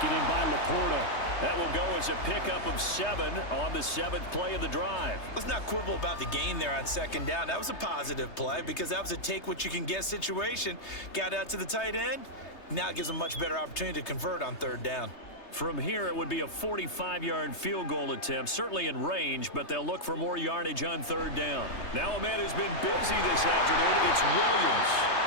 in by Laporta. That will go as a pickup of 7 on the 7th play of the drive. Let's not quibble about the gain there on 2nd down. That was a positive play because that was a take-what-you-can-get situation. Got out to the tight end. Now it gives them a much better opportunity to convert on 3rd down. From here, it would be a 45-yard field goal attempt, certainly in range, but they'll look for more yardage on 3rd down. Now a man who's been busy this afternoon, it's Williams.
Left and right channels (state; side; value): late; right; 3.3 ms